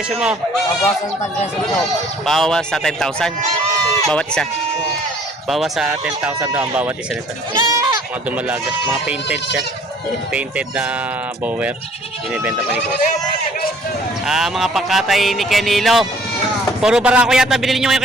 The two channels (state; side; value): normal; both; correlation 0.56